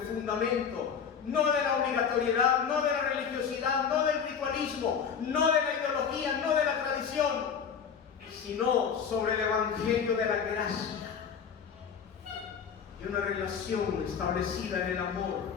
fundamento, no de la obligatoriedad, no de la religiosidad, no del ritualismo, no de la ideología, no de la tradición, sino sobre el Evangelio de la gracia y una relación establecida en el amor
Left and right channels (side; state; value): right; quieter; 7.0 dB